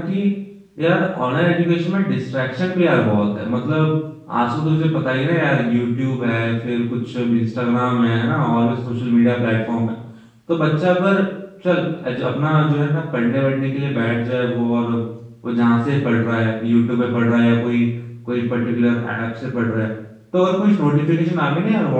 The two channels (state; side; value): identical; both; correlation 1.00